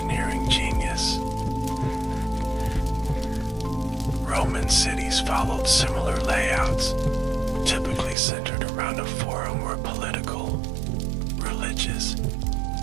genius. Roman cities followed similar layouts, typically centered around a forum where political, religious,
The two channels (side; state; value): left; drops out; at 8.2 s